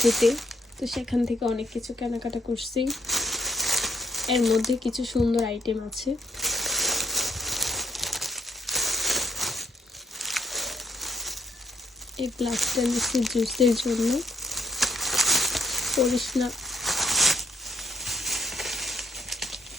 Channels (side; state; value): both; normal; correlation 0.73